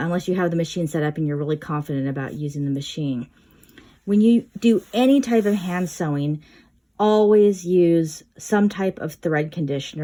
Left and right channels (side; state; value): both; identical; correlation 1.00